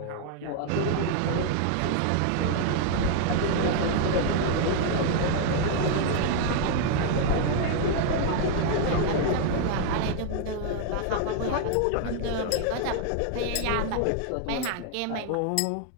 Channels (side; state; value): both; different; correlation 0.00